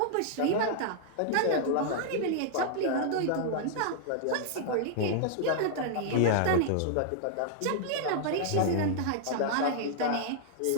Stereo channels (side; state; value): both; different; correlation -0.01